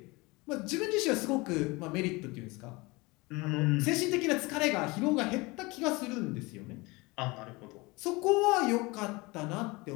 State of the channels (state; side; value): quieter; right; 24.3 dB